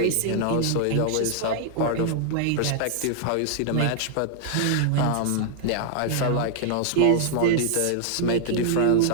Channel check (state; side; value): different; both; correlation -0.01